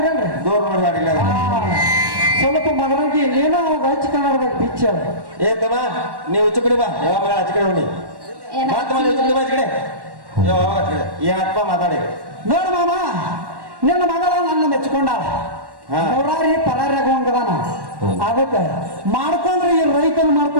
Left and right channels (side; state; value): left; late; 1.1 ms